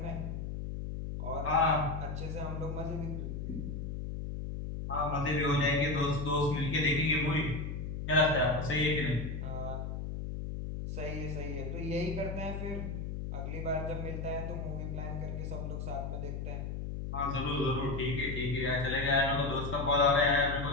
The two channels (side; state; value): left; noise; hum, 5 dB below the sound